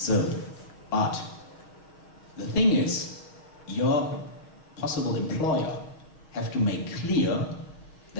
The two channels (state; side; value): late; right; 6.3 ms